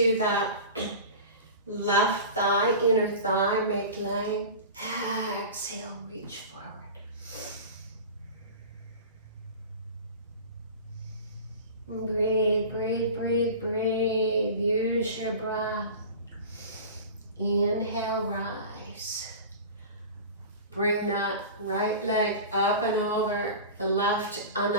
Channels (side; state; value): both; inverted; correlation -0.34